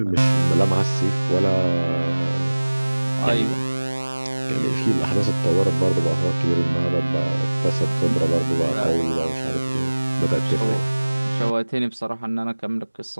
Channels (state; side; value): inverted; both; correlation -1.00